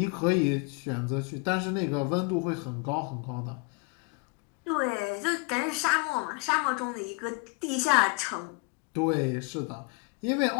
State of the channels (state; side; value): quieter; right; 30.9 dB